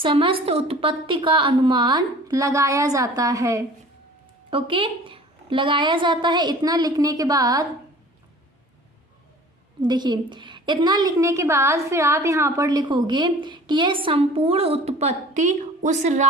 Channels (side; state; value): both; normal; correlation 0.46